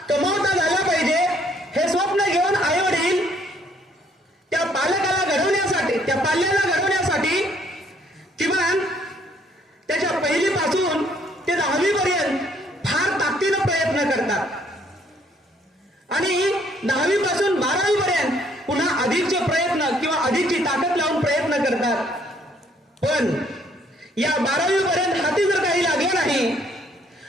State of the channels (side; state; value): both; normal; correlation 0.65